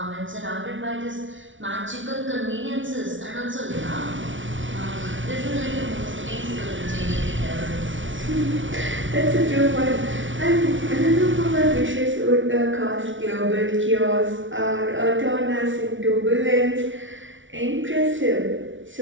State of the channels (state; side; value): late; left; 0.56 ms